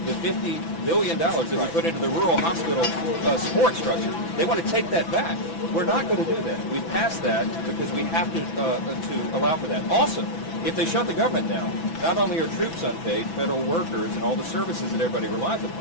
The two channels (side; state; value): right; late; 6.0 ms